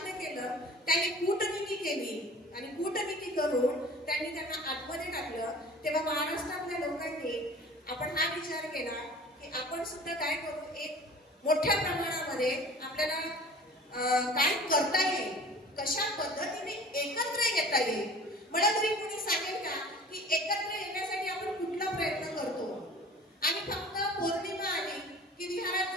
केलं. त्यांनी कूटनीती केली आणि कूटनीती करून त्यांनी त्यांना आतमध्ये टाकलं. तेव्हा महाराष्ट्रातल्या लोकांनी आपण हा विचार केला की आपण सुद्धा काय करू, एक मोठ्या प्रमाणामध्ये आपल्याला काय करता येईल, कशा पद्धतीने एकत्र येता येईल. मला तरी कोणी सांगेल का की एकत्र येण्यासाठी आपण कुठला प्रयत्न करतो? आणि फक्त पौर्णिमा आली की विहारात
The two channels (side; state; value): both; normal; correlation 0.44